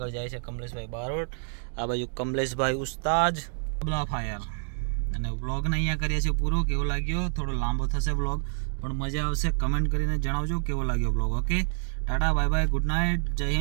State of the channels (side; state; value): left; silent; digital silence